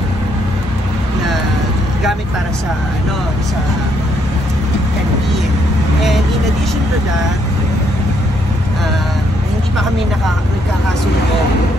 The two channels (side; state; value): both; normal; correlation 0.72